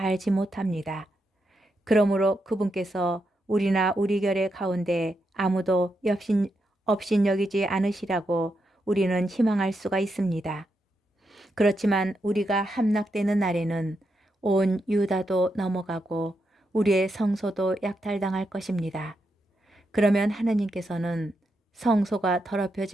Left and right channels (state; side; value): normal; both; correlation 0.84